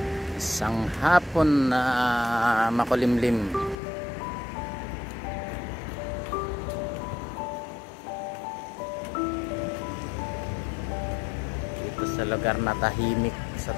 Isang hapon na makulimlim. Dito sa lugar na tahimik sa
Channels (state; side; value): drops out; right; at 3.8 s